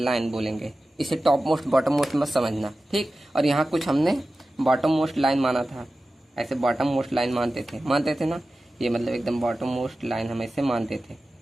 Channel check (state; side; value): normal; both; correlation 0.95